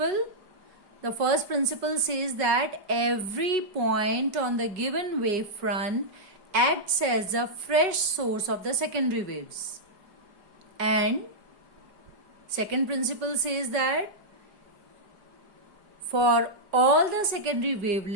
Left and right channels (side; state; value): left; late; 5.3 ms